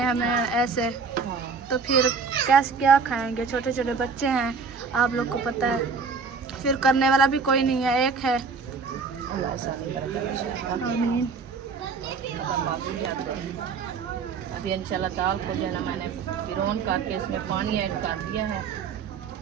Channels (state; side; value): quieter; left; 5.1 dB